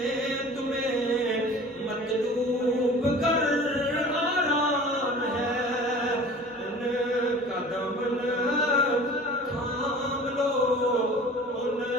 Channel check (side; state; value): both; normal; correlation 0.43